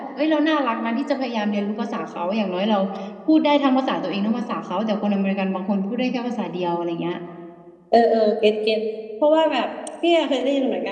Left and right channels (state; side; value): identical; both; correlation 1.00